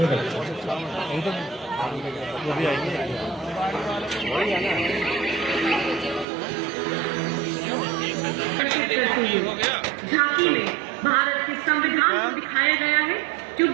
झांकी में भारत के संविधान को दिखाया गया है, जो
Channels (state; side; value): drops out; left; at 6.2 s